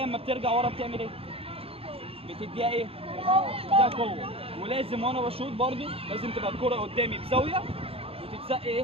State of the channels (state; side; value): late; left; 0.27 ms